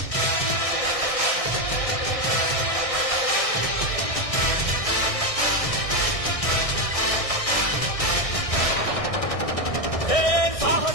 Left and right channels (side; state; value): right; late; 1.6 ms